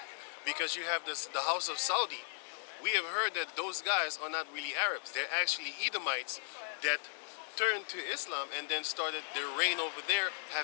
Because you have the house of Saudi. We have heard that those guys are not really Arabs. They're actually Edomites that turned to Islam and then started their reign over there,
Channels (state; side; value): silent; right; digital silence